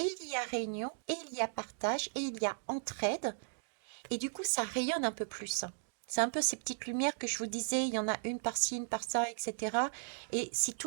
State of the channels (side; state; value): left; silent; digital silence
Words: il y a réunion, et il y a partage, et il y a entraide, et du coup ça rayonne un peu plus. C'est un peu ces petites lumières que je vous disais, il y en a une par-ci, une par-ça, etc. Et si